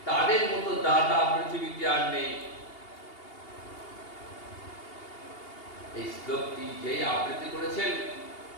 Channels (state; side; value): late; right; 2.8 ms